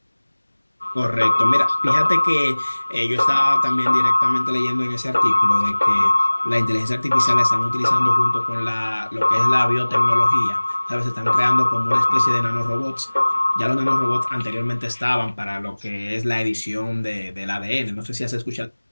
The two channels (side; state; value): both; inverted; correlation -1.00